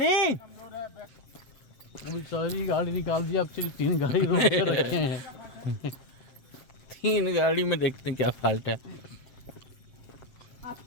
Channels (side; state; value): right; late; 7.8 ms